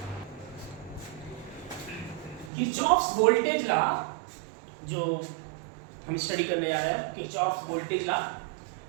Kirchhoff's voltage law जो हम स्टडी करने जा रहे हैं, Kirchhoff's voltage law.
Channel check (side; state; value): left; drops out; at 2.5 s